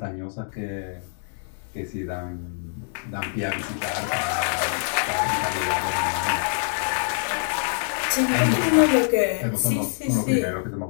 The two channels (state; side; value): silent; right; 62 dB below the other